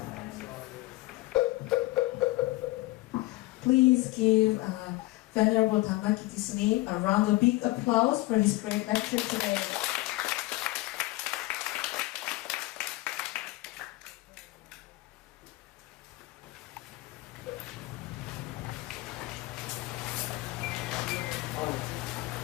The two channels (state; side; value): quieter; right; 19.8 dB